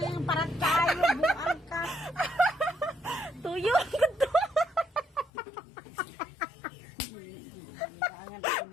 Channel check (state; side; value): drops out; right; at 5.3 s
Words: Parat kayo, buang ka. Tuyo gitu.